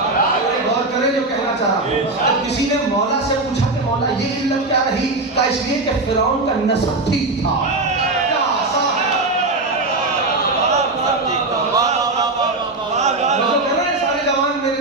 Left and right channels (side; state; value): left; quieter; 3.1 dB